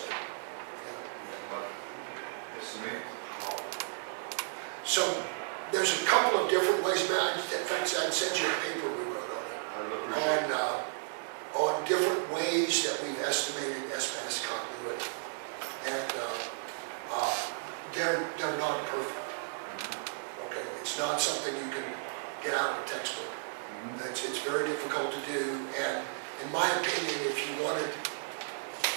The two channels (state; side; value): silent; left; 55 dB below the other